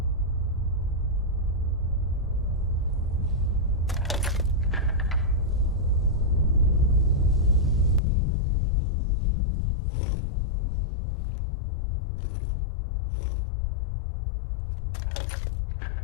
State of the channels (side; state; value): right; drops out; at 8.0 s